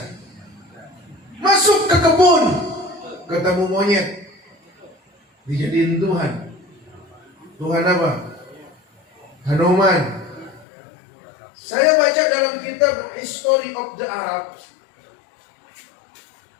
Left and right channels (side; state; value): right; drops out; at 10.7 s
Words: Masuk ke kebun, ketemu monyet. Dijadiin Tuhan. Tuhan apa? Hanuman. Saya baca dalam kitab History of the Arab,